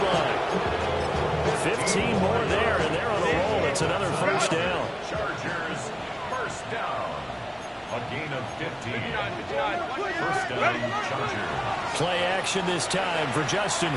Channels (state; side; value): identical; both; correlation 1.00